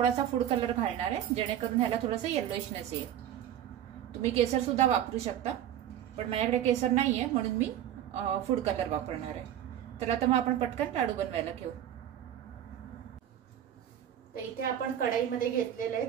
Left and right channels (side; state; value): left; quieter; 10.8 dB